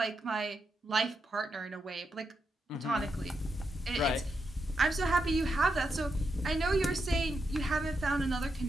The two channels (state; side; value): normal; both; correlation 0.84